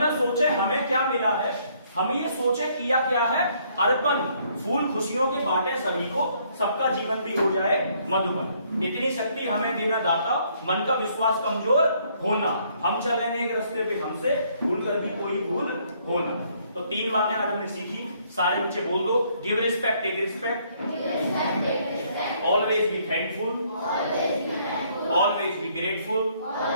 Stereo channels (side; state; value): both; inverted; correlation -0.67